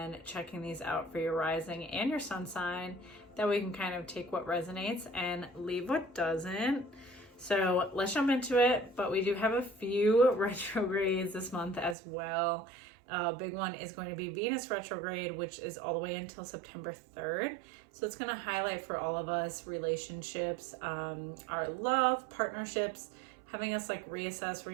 checking these out for your rising and your sun sign. That way you can kind of take what resonates and leave what doesn't. So let's jump into it, but we do have a few retrogrades this month as well. Big one is going to be Venus retrograde, which is all the way until September 3rd. So it's going to highlight for all of us relationships, our love, partnerships, having us like reassess,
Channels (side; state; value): left; drops out; at 12.0 s